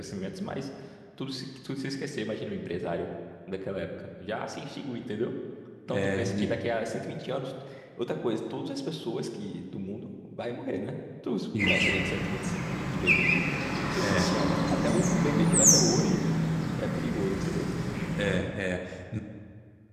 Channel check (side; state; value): both; identical; correlation 1.00